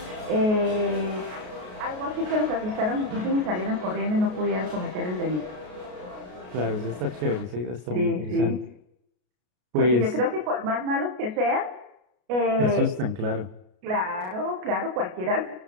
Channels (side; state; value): left; late; 33 ms